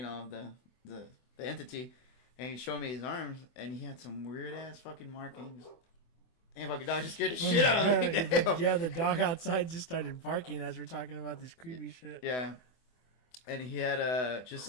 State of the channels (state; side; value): late; right; 24 ms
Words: entity." And he showed me his arms, and he had some weird ass fucking markings. And fucking dog just scared the shit out of me. Yeah, the dog outside just started barking as we're talking about this creepy shit. Yeah. And he had just